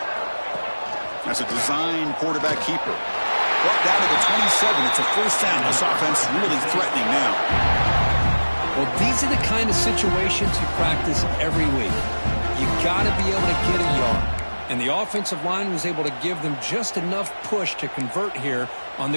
That's a design quarterback keeper. Brought down to the 27. It's a first down. This offense is really threatening now. Well, these are the kind of situations you practice every week. You got to be able to get a yard. And the offensive line was able to give them just enough push to convert here on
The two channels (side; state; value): both; inverted; correlation -1.00